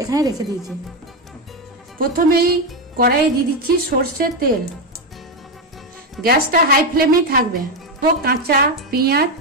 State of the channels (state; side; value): normal; both; correlation 0.09